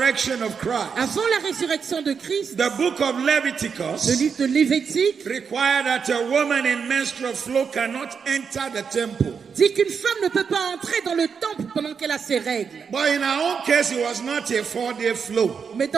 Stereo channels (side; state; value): left; quieter; 6.2 dB